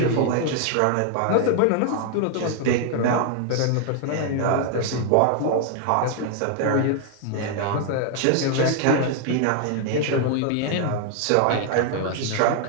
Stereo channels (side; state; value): both; different; correlation 0.00